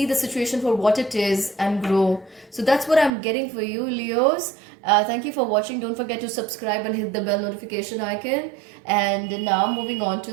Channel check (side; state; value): left; drops out; at 3.1 s